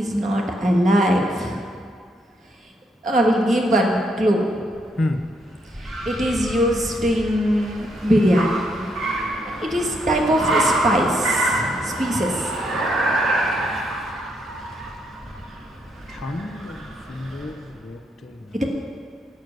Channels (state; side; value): normal; both; correlation 0.75